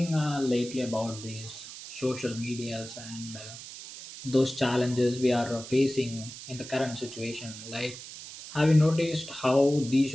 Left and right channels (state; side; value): noise; right; hiss, 13 dB below the sound